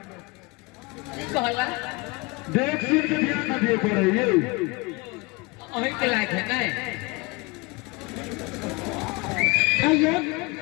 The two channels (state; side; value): quieter; right; 25.9 dB